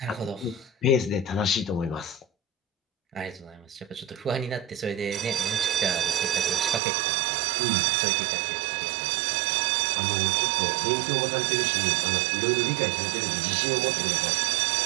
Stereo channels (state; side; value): drops out; left; at 6.8 s